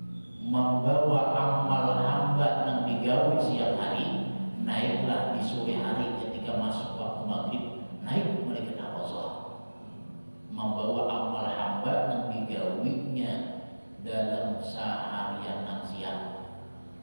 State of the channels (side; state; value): both; inverted; correlation -1.00